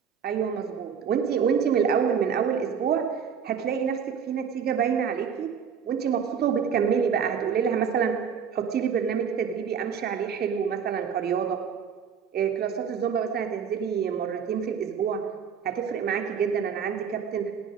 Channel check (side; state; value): left; quieter; 7.0 dB